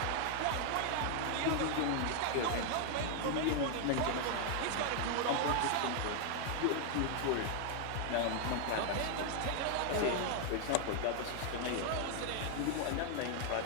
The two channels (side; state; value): both; different; correlation 0.00